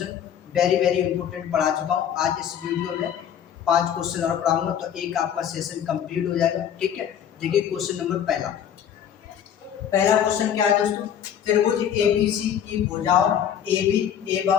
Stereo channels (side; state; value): right; quieter; 9.1 dB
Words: वेरी इंपॉर्टेंट पढ़ा चुका हूँ। आज इस वीडियो में 5 क्वेश्चन और पढ़ाऊंगा तो एक आपका सेशन कंप्लीट हो जाएगा। ठीक है, देखिए क्वेश्चन नंबर पहला क्वेश्चन क्या है दोस्तों। त्रिभुज एबीसी की भुजाओं AB